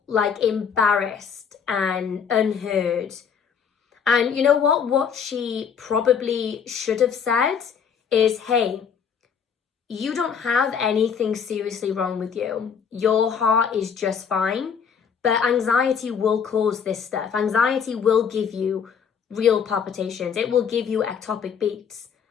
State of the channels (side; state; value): right; quieter; 6.9 dB